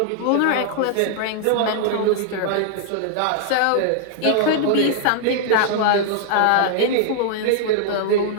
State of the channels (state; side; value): different; both; correlation 0.00